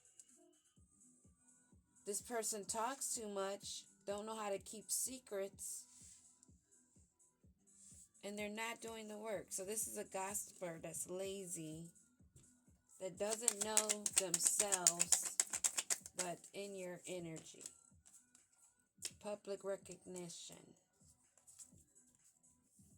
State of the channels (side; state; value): both; identical; correlation 1.00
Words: This person talks too much, don't know how to keep secrets, and they're not doing the work. So this is a gossiper that's lazy, that doesn't know themselves, but in your energy. Public recognition.